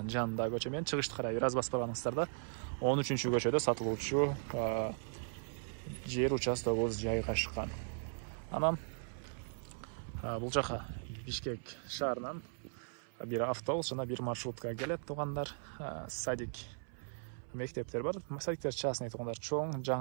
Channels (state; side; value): silent; left; 52 dB below the other